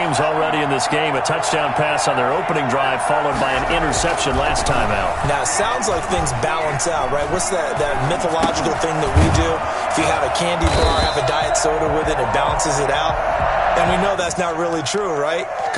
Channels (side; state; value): both; identical; correlation 1.00